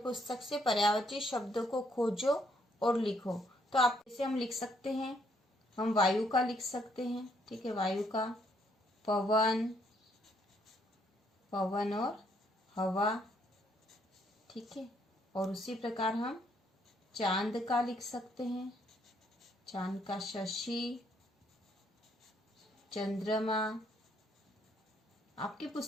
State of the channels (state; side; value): normal; both; correlation 0.70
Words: से पर्यायवाची शब्दों को खोजो और लिखो। तो आप इसे हम लिख सकते हैं, हम वायु का लिख सकते हैं। ठीक है, वायु का पवन, पवन और हवा। ठीक है, और उसी प्रकार हम चांद का लिख सकते हैं, चांद का शशि, चंद्रमा। आपकी